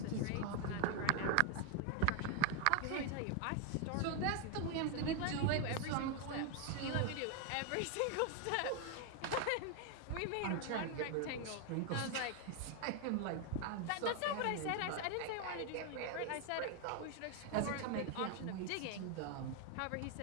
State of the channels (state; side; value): different; both; correlation 0.00